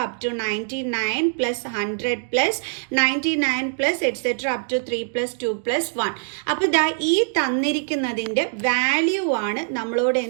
up to 99 + 100 + 99 + etcetera up to 3 + 2 + 1. അപ്പോൾ ദാ ഈ തന്നിരിക്കുന്നതിൻ്റെ value ആണ് നമ്മളോട്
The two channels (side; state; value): left; silent; 63 dB below the other